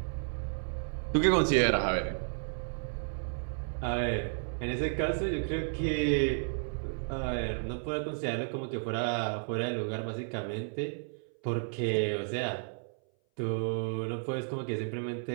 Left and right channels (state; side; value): silent; left; 56 dB below the other